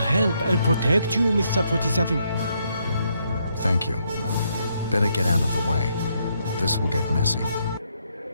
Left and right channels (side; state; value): both; inverted; correlation -0.75